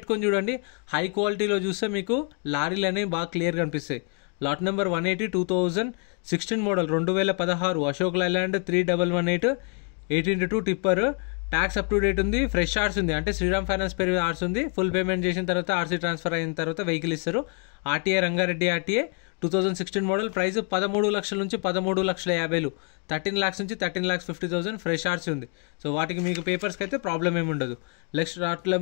చూడండి. హై క్వాలిటీలో చూస్తే మీకు లారీలు అనేవి బాగా క్లియర్ కనిపిస్తాయి. Lot number 180 2016 model 2016 Ashok Leyland 3118 18x2 tipper. Tax up to date ఉంది, ఫ్రెష్ ఆర్ట్స్ ఉంది, అంటే శ్రీరామ్ ఫైనాన్స్ పేరు ఆర్ట్స్ ఉంది. ఫుల్ పేమెంట్ చేసిన తర్వాత ఆర్సీ ట్రాన్స్ఫర్ అయిన తర్వాత వెహికల్ ఇస్తారు. RTA Rangareddy RTA 2016 model. Price 13 లక్షల నుంచి 13,50,000, 13 lakhs నుంచి 13,50,000 ఫ్రెష్ ఆర్ట్స్ ఉంది. సో వాటికి మీకు పేపర్స్కి అయితే ప్రాబ్లం ఏమి ఉండదు. Next lot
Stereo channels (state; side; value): quieter; right; 39.8 dB